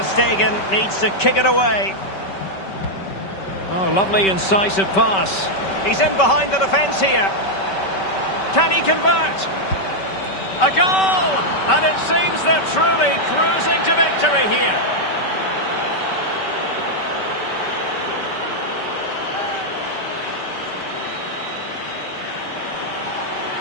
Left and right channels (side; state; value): right; late; 5.2 ms